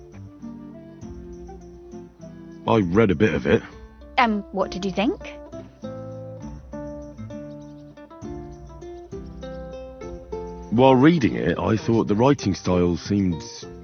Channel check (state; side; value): identical; both; correlation 1.00